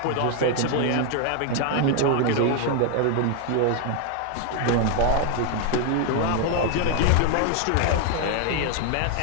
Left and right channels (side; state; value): both; different; correlation 0.01